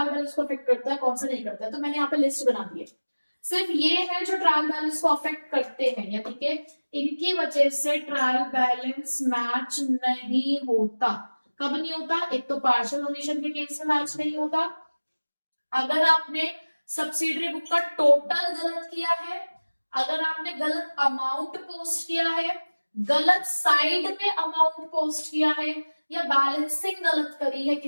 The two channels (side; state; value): both; inverted; correlation -1.00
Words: बैलेंस को अफेक्ट करता है, कौन सा नहीं करता है। तो मैंने यहाँ पे लिस्ट बना दी है, सिर्फ ये है जो ट्रायल बैलेंस को अफेक्ट करते हैं, यानी कि इनकी वजह से ट्रायल बैलेंस मैच नहीं होता, कब नहीं होता? एक तो पार्शियल ओमिशन के केस में मैच नहीं होता, अगर आपने सब्सिडरी बुक का टोटल गलत किया है, अगर आपने गलत अमाउंट पोस्ट किया है, गलत साइड में अमाउंट पोस्ट किया है, या बैलेंसिंग गलत करी है